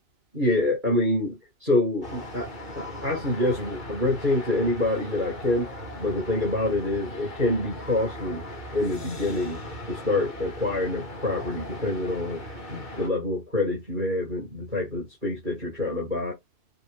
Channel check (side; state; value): left; late; 2.2 ms